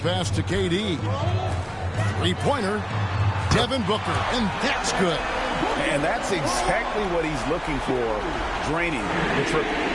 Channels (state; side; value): identical; both; correlation 1.00